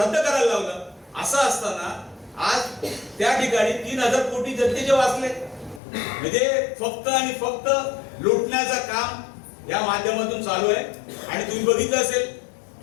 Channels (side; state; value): right; drops out; at 5.8 s